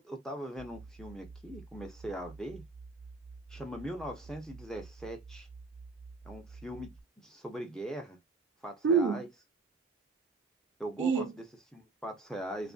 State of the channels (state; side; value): quieter; left; 3.7 dB